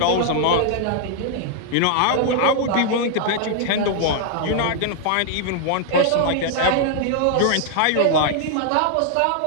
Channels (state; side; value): different; both; correlation 0.00